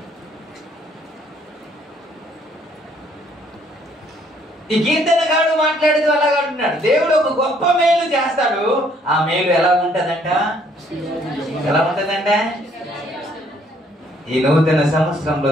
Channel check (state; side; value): normal; both; correlation 0.65